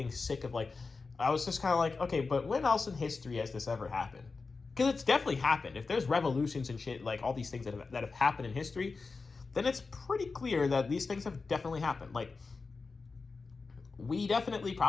sick of like, I was just kind of like, okay, but when else in history has this ever happened? Because it's definitely happened. If there's revolutions and shit, like all these things that have happened in history, then it's pretty clear that these things have definitely happened. Like, we definitely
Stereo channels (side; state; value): right; quieter; 4.3 dB